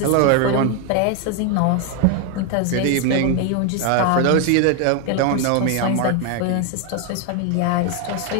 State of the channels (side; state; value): both; different; correlation 0.01